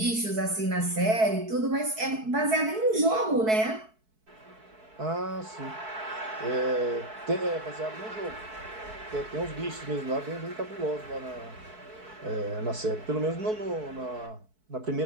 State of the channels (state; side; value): late; left; 4.6 ms